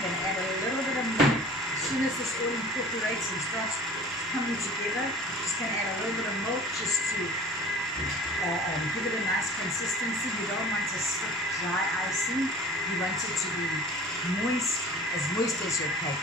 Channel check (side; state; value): both; normal; correlation 0.44